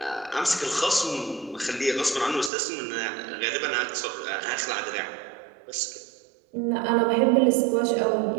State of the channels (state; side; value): drops out; left; at 2.5 s